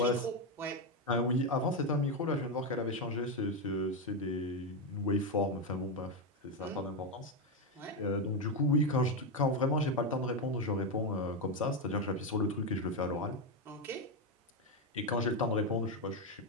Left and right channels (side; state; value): both; normal; correlation 0.07